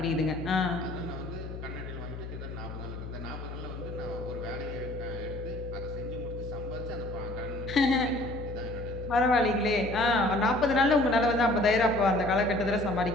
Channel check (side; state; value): left; noise; hum, 9 dB below the sound